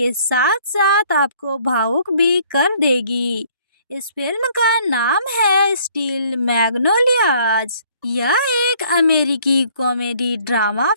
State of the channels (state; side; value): inverted; both; correlation -0.60